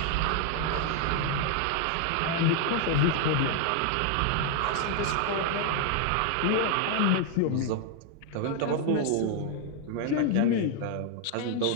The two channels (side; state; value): both; different; correlation 0.00